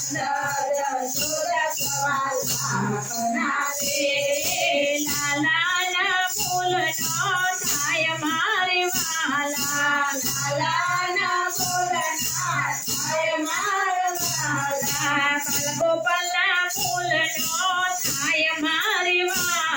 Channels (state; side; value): identical; both; correlation 1.00